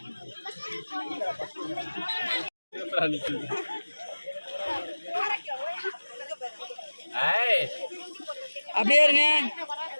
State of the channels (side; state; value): both; inverted; correlation -1.00